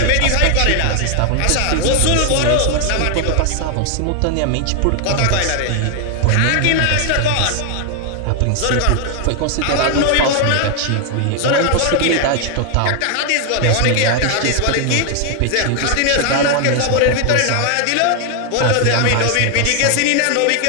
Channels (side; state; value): both; different; correlation 0.00